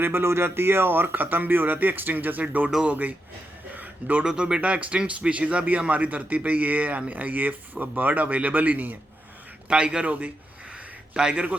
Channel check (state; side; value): normal; both; correlation 0.85